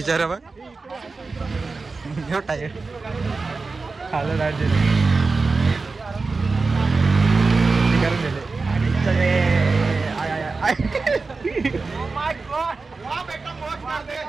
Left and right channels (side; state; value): left; quieter; 4.0 dB